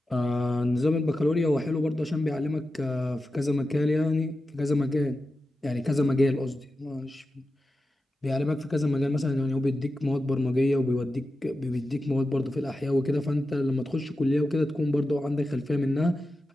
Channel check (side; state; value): both; normal; correlation 0.91